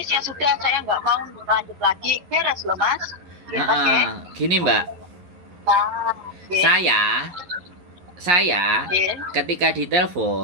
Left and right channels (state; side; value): late; left; 11 ms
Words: ya sudah, saya nggak mau lanjut lagi, beres loh Mas. Gini Mbak, saya ketika